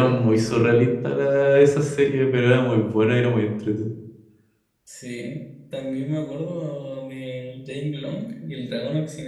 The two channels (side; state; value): both; identical; correlation 1.00